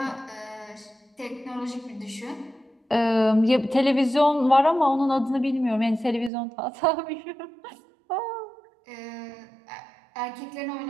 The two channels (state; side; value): drops out; left; at 6.3 s